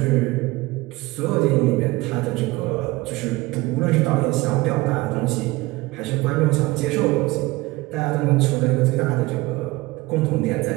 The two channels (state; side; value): quieter; left; 20.9 dB